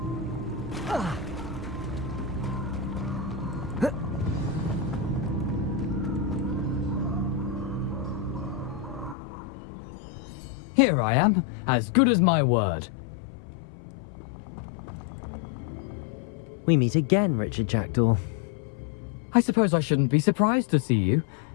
Here I am, as good as my word. We meet again, Richard Jackdaw. I suppose I shouldn't be surprised to see you.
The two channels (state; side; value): drops out; right; at 9.2 s